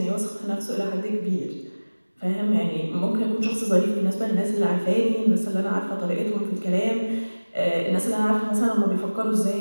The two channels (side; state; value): both; inverted; correlation -1.00